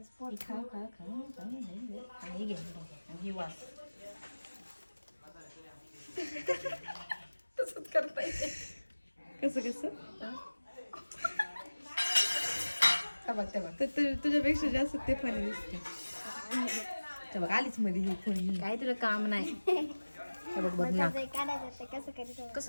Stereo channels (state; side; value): inverted; both; correlation -1.00